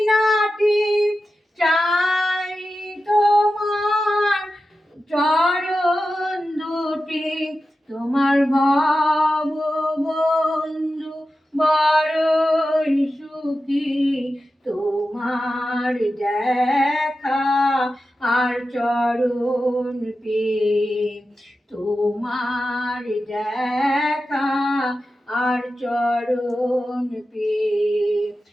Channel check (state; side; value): normal; both; correlation 0.92